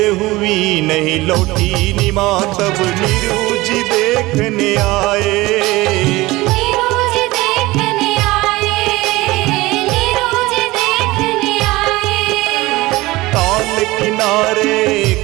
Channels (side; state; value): left; quieter; 19.9 dB